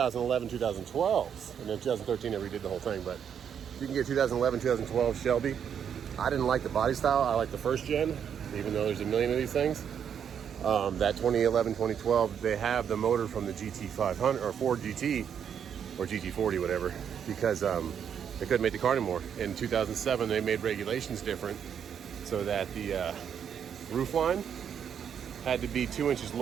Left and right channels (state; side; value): quieter; left; 8.1 dB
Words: 2012s. And then 2013, they redid the whole thing. But you can get 2011, 2012 Shelby. I didn't like the body style. I like the first gen, even though there's a million of these things. That 2011, 2012, they have the motor from the GT500 or Ford GT or GT40, whatever, because they couldn't make the car anymore. In 2007, they made regulations different so that the roof line had to be 2 inches